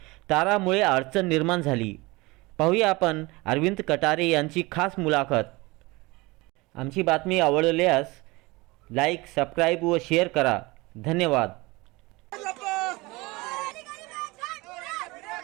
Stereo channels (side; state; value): left; quieter; 23.1 dB